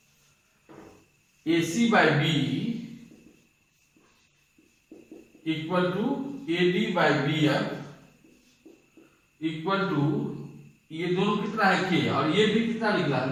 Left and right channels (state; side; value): identical; both; correlation 1.00